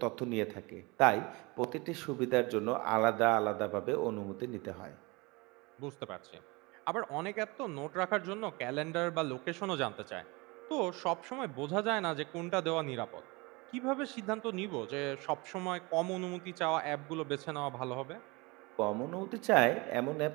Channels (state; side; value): quieter; left; 25.8 dB